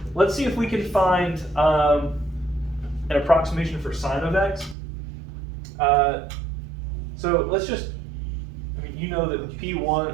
Let's see if we can find an approximation for sine of x. So let's just, I mean, you know that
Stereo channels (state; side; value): drops out; left; at 4.8 s